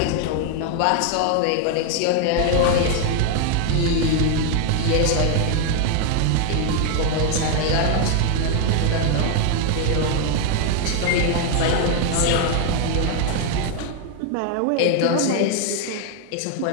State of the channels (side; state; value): both; different; correlation 0.00